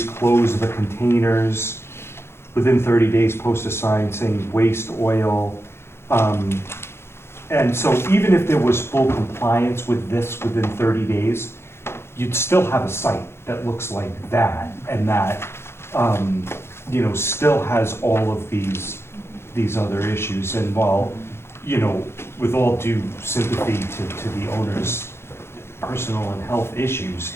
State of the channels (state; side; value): late; right; 0.12 ms